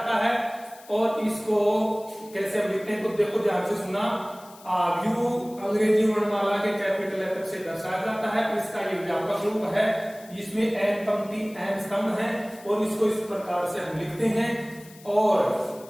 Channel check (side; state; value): left; noise; hiss, 22 dB below the sound